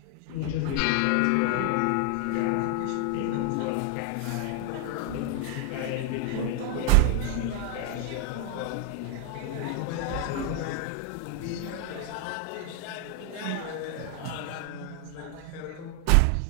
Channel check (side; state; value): both; different; correlation 0.00